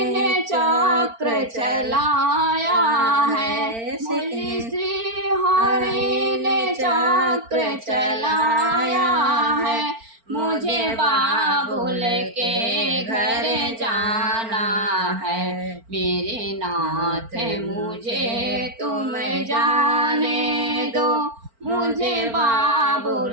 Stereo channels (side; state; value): left; late; 4.4 ms